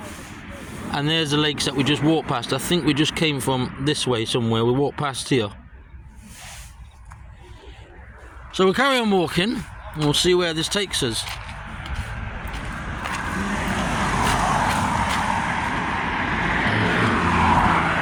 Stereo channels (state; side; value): identical; both; correlation 1.00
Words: And there's the lakes that we just walked past. I think we just came from this way somewhere. We walked past here. So we'll carry on walking, and we'll see where this takes us.